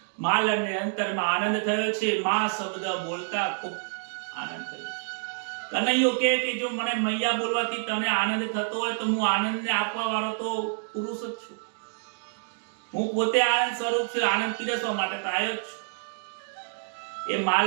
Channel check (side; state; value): left; silent; digital silence